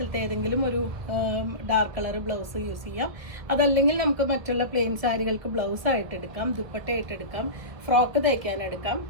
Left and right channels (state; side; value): late; left; 1.7 ms